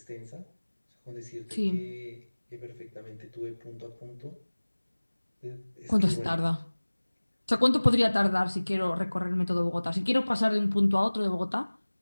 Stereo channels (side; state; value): both; inverted; correlation -1.00